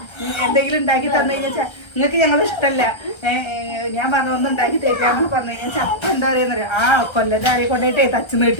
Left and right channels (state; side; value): late; right; 1.3 ms